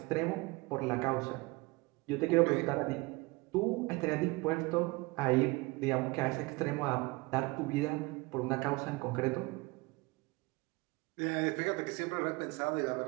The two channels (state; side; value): quieter; left; 24.2 dB